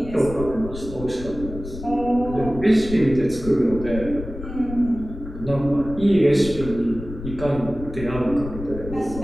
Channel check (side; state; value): left; noise; rumble, 11 dB below the sound